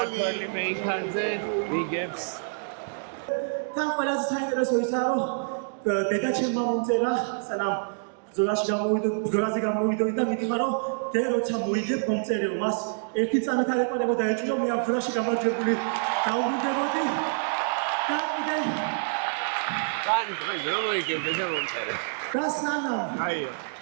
მეიქანზე იგებს. თან ყველაზე საინტერესო ისაა რომ დედა ჩემმა მომწერა სანამ ბრძოლაზე გამოვიდოდი და მითხრა რომ დე როცა მოიგებ მომწერიო მას ერთი წამით არ ეყარებოდა ეჭვიო მე ამ ბრძოლაში გამარჯვებული დაუბრუნდებოდი და კიდე კაი რომ მოიგებ დედა მომწერა და სანამ აი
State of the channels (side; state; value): left; silent; digital silence